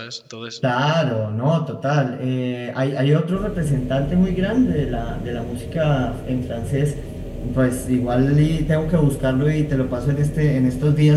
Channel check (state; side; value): identical; both; correlation 1.00